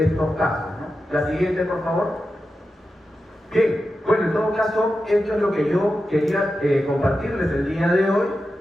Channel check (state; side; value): normal; both; correlation 0.91